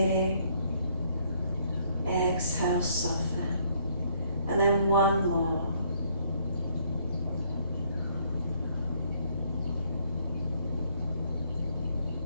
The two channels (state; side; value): inverted; both; correlation -0.66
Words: Exhale, soften. And then 1 more.